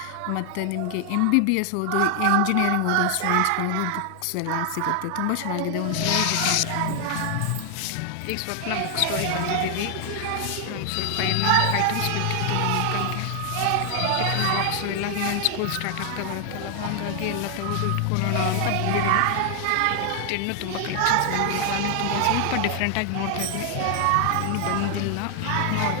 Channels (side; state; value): both; different; correlation 0.00